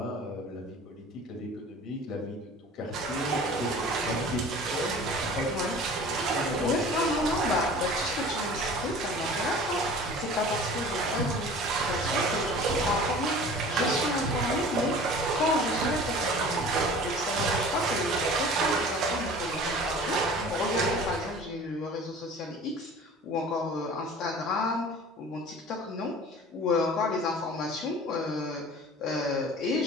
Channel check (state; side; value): normal; both; correlation 0.43